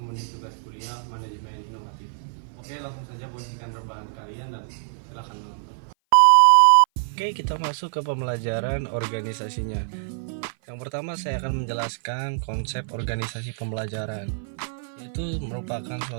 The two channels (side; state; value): left; silent; 57 dB below the other